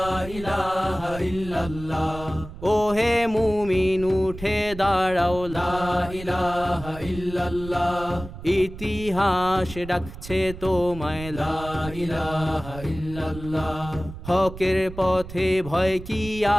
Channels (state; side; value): noise; right; rumble, 13 dB below the sound